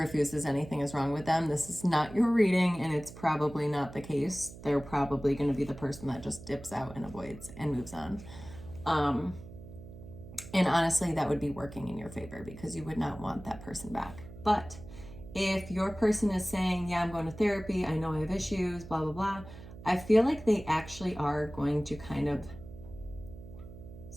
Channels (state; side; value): noise; right; hum, 15 dB below the sound